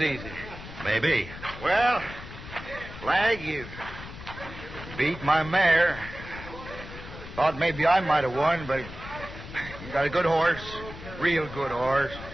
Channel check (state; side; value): noise; left; rumble, 13 dB below the sound